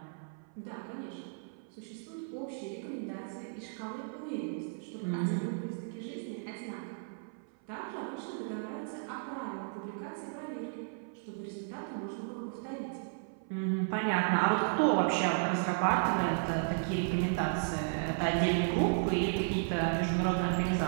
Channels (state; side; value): silent; left; 55 dB below the other